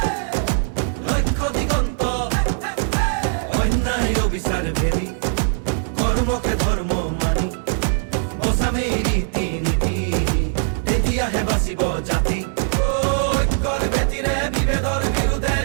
লক্ষ্য দিগন্ত অন্যায় অবিচাৰ ভেদি কৰ্মকে ধৰ্ম মানি বচামে ৰীতি নীতি তেতিয়াহে বাচিব জাতি ঐক্যৰ ভেটিৰে বিভেদৰ বিৰুদ্ধে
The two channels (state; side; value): silent; left; digital silence